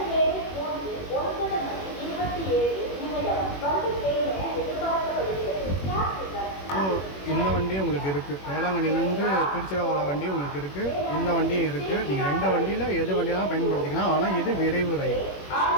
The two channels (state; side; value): late; right; 21 ms